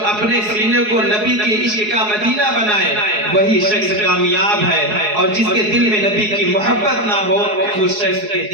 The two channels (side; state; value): left; late; 4.7 ms